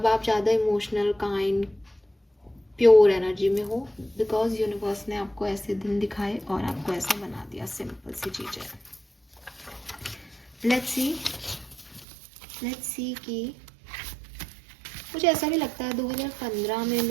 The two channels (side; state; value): left; drops out; at 12.1 s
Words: आप ज़्यादा इमोशनल, काइंड, प्योर एनर्जी में हो, बिकॉज यूनिवर्स ने आपको ऐसे दिन दिखाए और आपको ऐसा बना दिया। सिंपल सी चीज़ है। लेट्स सी कि मुझे ऐसा भी लगता है 2015 में